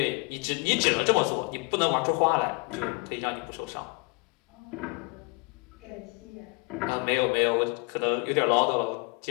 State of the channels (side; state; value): right; quieter; 30.5 dB